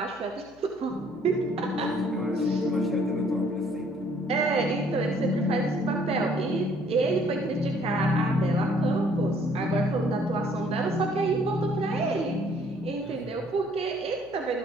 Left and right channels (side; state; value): left; noise; hum, 26 dB below the sound